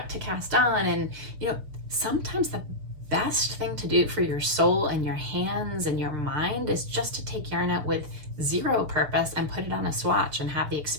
to cast on, and sometimes the best thing to do for your soul and your hands and your mind is just to take yarn out with zero purpose and put it on a swatch and have the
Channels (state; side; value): late; left; 6.8 ms